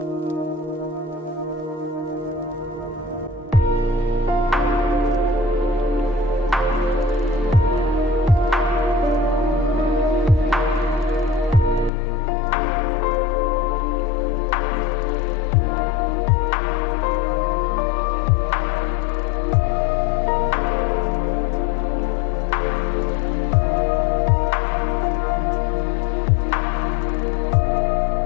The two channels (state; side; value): drops out; right; at 11.9 s